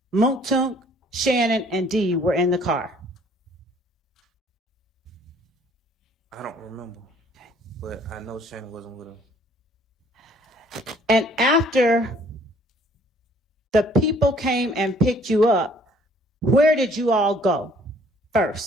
Moontunk, Shannon, and Dee were in the car? I don't remember. But I know Shannon wasn't with her. And after the people came and picked you up, where did you all go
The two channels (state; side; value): normal; both; correlation 0.59